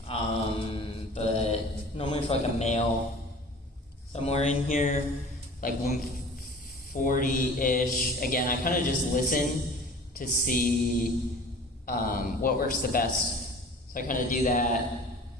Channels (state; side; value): normal; both; correlation 0.43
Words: But normally for like a male, somewhere in here, like 140-ish. Again, I kind of just listen to see what works the best. So I kind of do that,